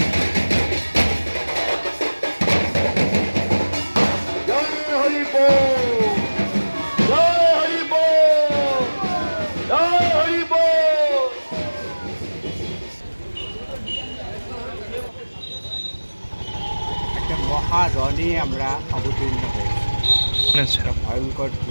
একটা মহারণে আমরা অবতীর্ণ হয়েছি। একটা ভয়ঙ্কর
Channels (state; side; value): inverted; both; correlation -1.00